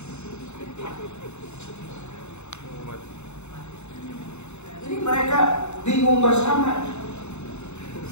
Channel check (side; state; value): right; late; 0.82 ms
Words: Jadi mereka bingung bersama.